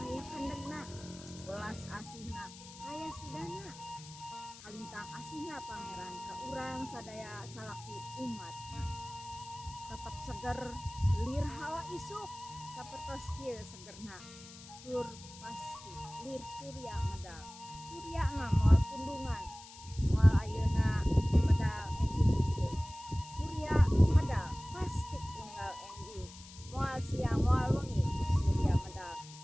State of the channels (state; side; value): noise; left; hiss, 17 dB below the sound